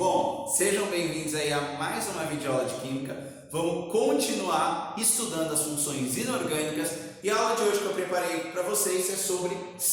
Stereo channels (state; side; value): identical; both; correlation 1.00